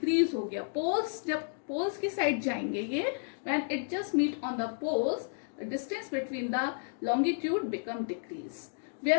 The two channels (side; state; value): right; silent; digital silence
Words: हो गया. Poles, जब poles की side जाएंगे ये, when it just meet on the poles, the distance between the longitude become decrease,